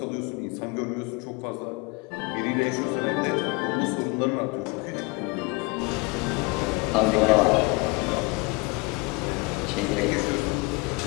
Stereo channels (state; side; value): quieter; right; 27.5 dB